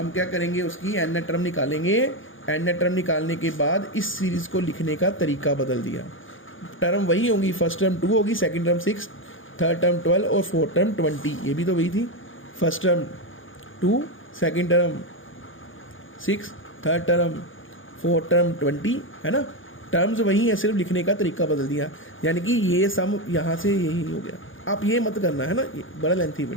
क्या करेंगे, उसकी n टर्म निकालेंगे, n टर्म निकालने के बाद इस सीरीज़ को लिखने का तरीका बदल दिया। टर्म वही होंगी, फर्स्ट टर्म 2 होगी, सेकंड टर्म 6, थर्ड टर्म 12 और फोर्थ टर्म 20, ये भी तो वही थी, first term 2 second term 6 third term fourth term 20, है ना, टर्म्स वही है, सिर्फ लिखने का तरीका बदल दिया। यानी कि ये सम यहाँ से यही हो गया। आप ये मत करना, है ना, ये बड़ा लेंथी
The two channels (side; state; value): right; late; 0.58 ms